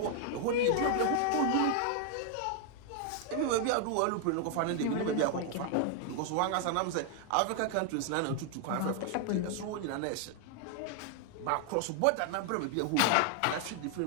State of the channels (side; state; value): both; different; correlation 0.00